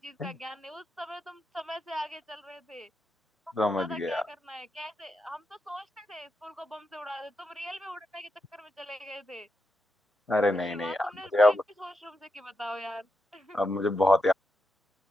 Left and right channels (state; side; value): normal; both; correlation 0.85